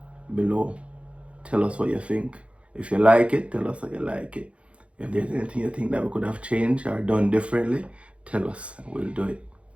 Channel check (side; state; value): left; late; 0.061 ms